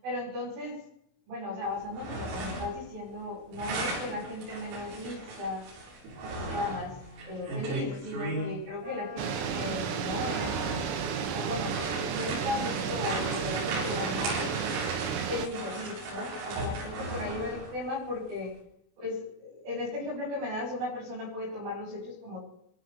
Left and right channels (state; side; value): late; left; 28 ms